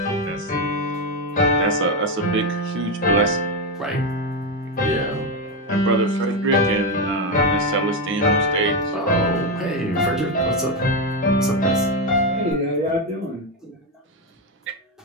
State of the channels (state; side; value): normal; both; correlation 0.09